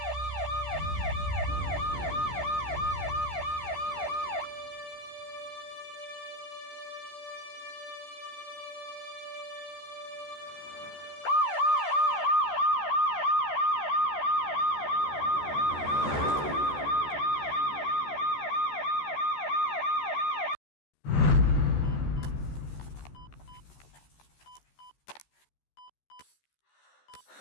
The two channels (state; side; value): late; right; 14 ms